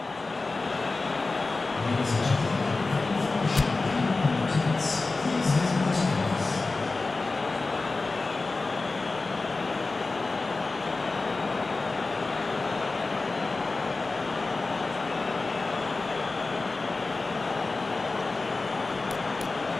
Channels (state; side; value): quieter; right; 3.6 dB